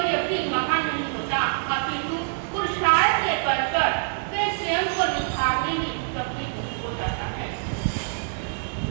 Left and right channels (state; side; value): silent; left; 62 dB below the other